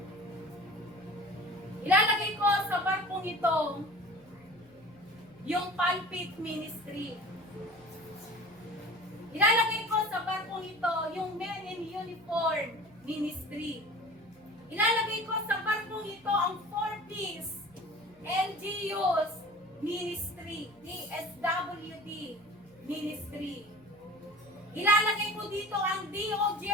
Ilalagay ko sa barkong ito yung pulpit ministry. Ilalagay ko sa barkong ito yung men in uniform ministry. Ilalagay ko sa barkong ito ang 4Ps, LGUs ministry, DSWD ministry. Ilalagay ko dito ang DOJ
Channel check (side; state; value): right; noise; hum, 29 dB below the sound